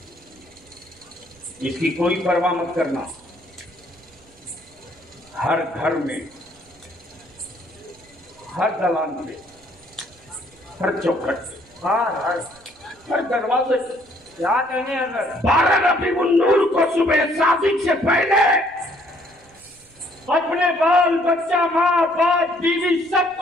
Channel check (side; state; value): right; noise; rumble, 29 dB below the sound